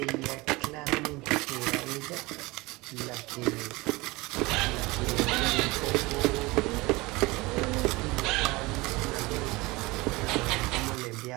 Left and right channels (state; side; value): quieter; left; 22.6 dB